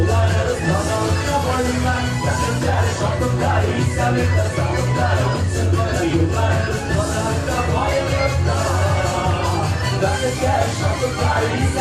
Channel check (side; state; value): both; identical; correlation 1.00